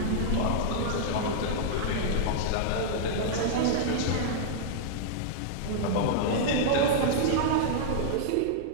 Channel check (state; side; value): different; both; correlation -0.01